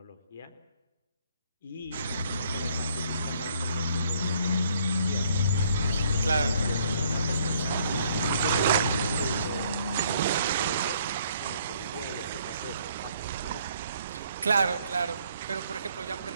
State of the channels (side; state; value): both; inverted; correlation -0.64